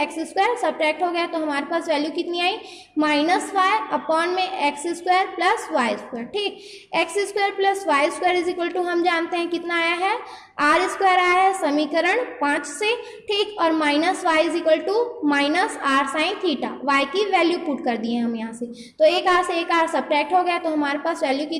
एक्स स्क्वायर सब्ट्रैक्ट हो गया, तो हमारे पास वैल्यू कितनी आई, माइनस वाई अपॉन में x square plus y square. ठीक, x square plus y square is equal to हम जानते हैं कितना आया है, आर स्क्वायर आया है समीकरण 5 से। ठीक, और minus y is equal to minus r sine theta, y की वैल्यू पुट कर दिए हम यहाँ से, तो एक आर से एक आर सब्ट्रैक्ट हो गया, तो हमारे पास वैल्यू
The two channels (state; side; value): identical; both; correlation 1.00